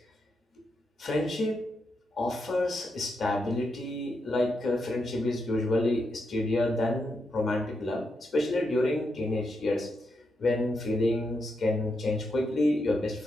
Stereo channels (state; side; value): normal; both; correlation 0.83